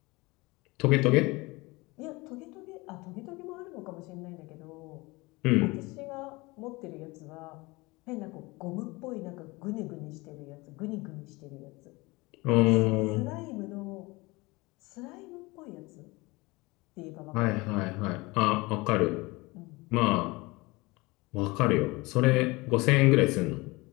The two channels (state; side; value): quieter; right; 23.5 dB